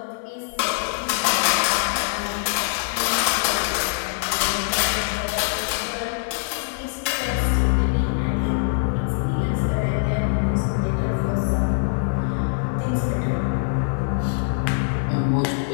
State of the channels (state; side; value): silent; right; digital silence